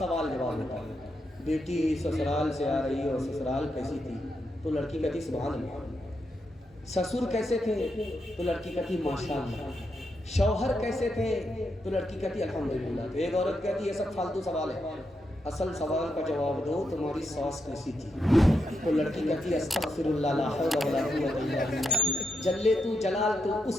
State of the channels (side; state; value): both; normal; correlation 0.83